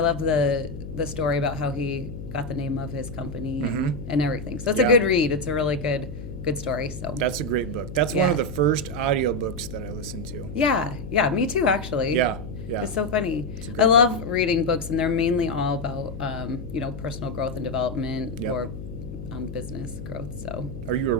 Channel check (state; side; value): noise; left; hum, 10 dB below the sound